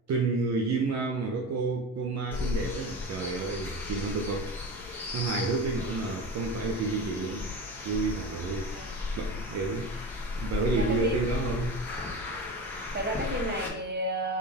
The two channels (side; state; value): both; normal; correlation 0.28